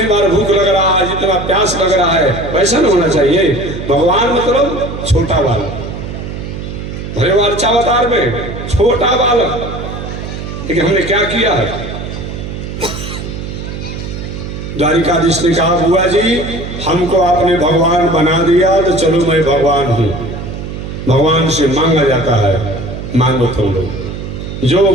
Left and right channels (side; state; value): right; noise; hum, 8 dB below the sound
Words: बार भूख लग रहा है, जितना प्यास लग रहा है, वैसा नहीं होना चाहिए। भगवान मतलब छोटा बालक, भले वो अच्छा अवतार में छोटा बालक, लेकिन हमने क्या किया है? द्वारिकाधीश ने कहा, बुआ जी हमको आपने भगवान बना दिया तो चलो मैं भगवान हूं। भगवान से मांगा जाता है, मांगो तुम लोग, जो